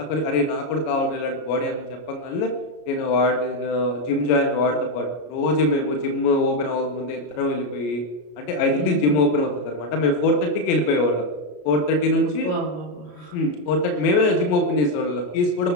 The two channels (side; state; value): right; late; 33 ms